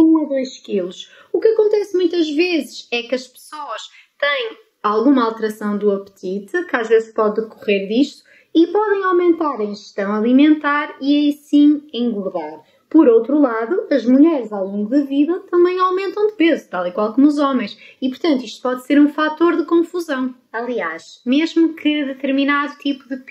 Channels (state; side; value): identical; both; correlation 1.00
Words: a 2 kg. O que acontece muitas vezes é que as pessoas têm alguma alteração do apetite, que às vezes pode decorrer disto, e podem aumentar a ingestão alimentar e aí sim engordar. Por outro lado, as mulheres ao longo da vida também aumentam de peso, tal e qual como os homens, e portanto isto pode ser um fator de confusão. Aliás, mesmo que determinado tipo de